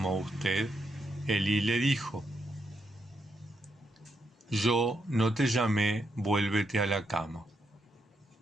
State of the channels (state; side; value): normal; both; correlation 0.80